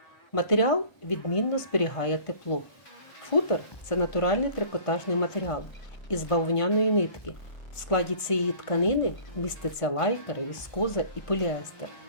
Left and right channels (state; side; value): late; right; 1.5 ms